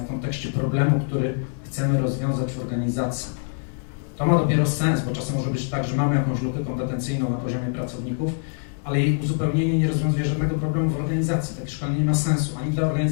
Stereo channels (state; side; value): silent; right; 59 dB below the other